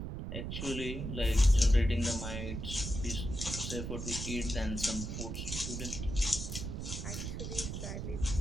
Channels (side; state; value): right; noise; rumble, 5 dB below the sound